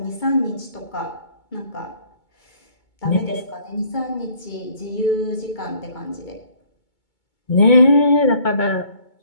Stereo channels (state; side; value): late; right; 2.2 ms